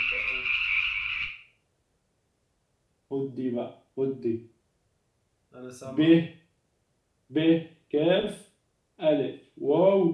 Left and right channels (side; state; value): both; identical; correlation 1.00